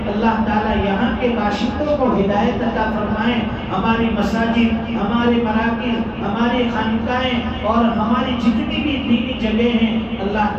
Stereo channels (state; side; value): identical; both; correlation 1.00